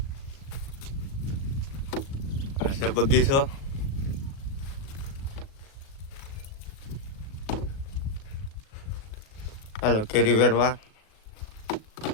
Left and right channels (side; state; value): right; late; 37 ms